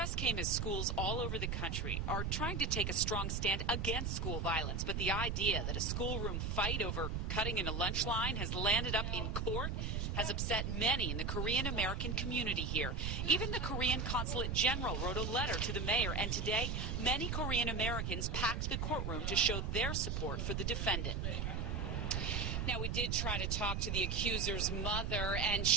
came as schools all over the country are trying to take a strong stand against school violence, but the idea that a schoolroom fight over cutting in a lunch line has landed up in court has upset many in the Korean American community here. Even the Korean Consulate General wrote a letter to the mayor, and today many Korean Americans packed the courtroom to show their support for the defendant. Now, we did try to talk to the accuser's mother, and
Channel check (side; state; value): right; noise; rumble, 1 dB below the sound